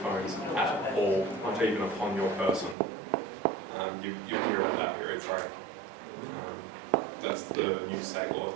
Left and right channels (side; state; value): left; drops out; at 2.8 s